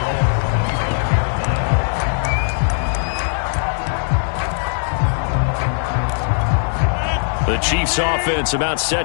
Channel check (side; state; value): right; silent; digital silence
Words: The Chiefs offense about